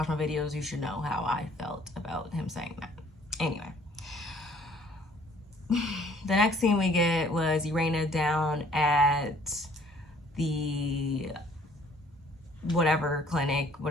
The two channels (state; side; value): normal; both; correlation 0.57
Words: my videos, you should know how I felt about him saying that. Anyway. The next scene we get was Irena down at the whatever clinic,